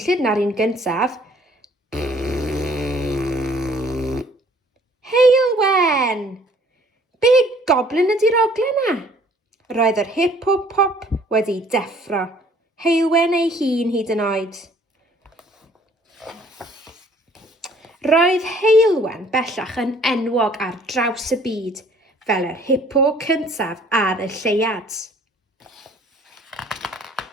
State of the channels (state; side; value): normal; both; correlation 0.57